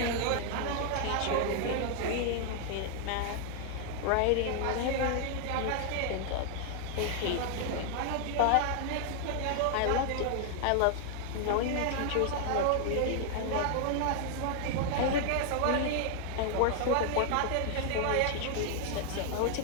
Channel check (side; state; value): both; different; correlation 0.00